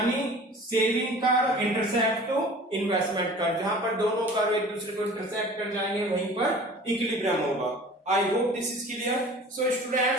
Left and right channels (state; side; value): normal; both; correlation 0.43